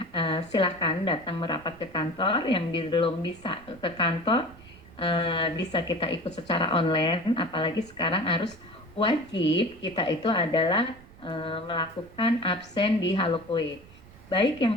silakan datang merapat ke kantor. Yang belum bisa ke kantor, bisa kita ikut secara online. Apalagi sekarang harus wajib kita itu adalah melakukan absen di Halokoe. Baik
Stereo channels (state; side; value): noise; right; rumble, 22 dB below the sound